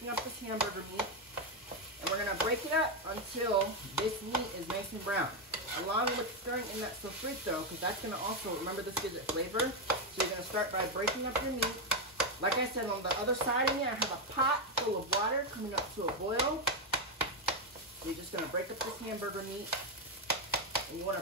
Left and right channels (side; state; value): both; normal; correlation 0.05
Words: up this hamburger meat, and we're going to break it up until this meat is nice and brown, along with stirring in that sofrito, because that's going to also, remember, this gives it flavor. So you're going to start by breaking up your meat. Like I said, on the other side of me, I have a pot full of water coming up to a boil. So you're just going to break up this hamburger meat, and you want